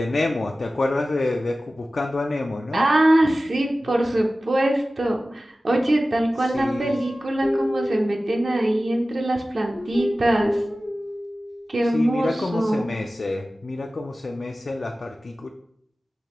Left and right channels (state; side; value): normal; both; correlation 0.96